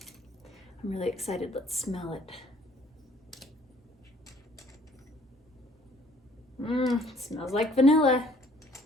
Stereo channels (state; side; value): normal; both; correlation 0.59